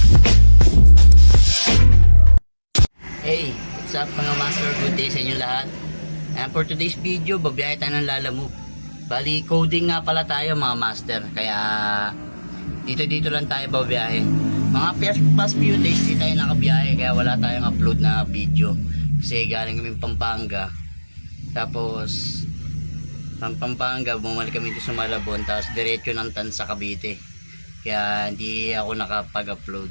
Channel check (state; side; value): inverted; both; correlation -1.00